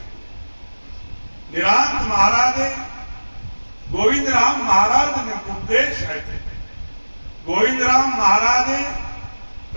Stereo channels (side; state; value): both; inverted; correlation -1.00